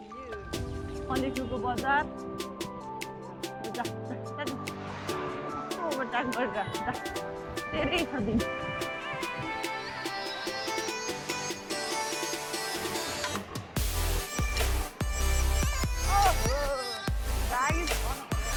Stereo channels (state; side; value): identical; both; correlation 1.00